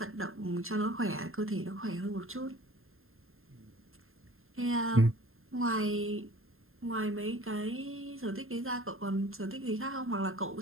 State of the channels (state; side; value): late; left; 0.61 ms